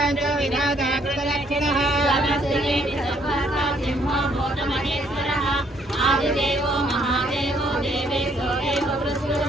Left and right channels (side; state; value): both; normal; correlation 0.67